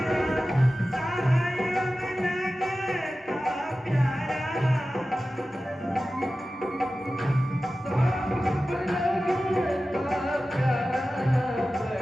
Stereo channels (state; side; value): normal; both; correlation 0.95